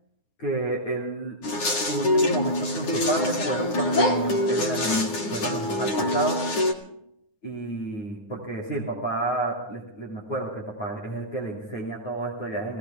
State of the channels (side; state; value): right; late; 9.8 ms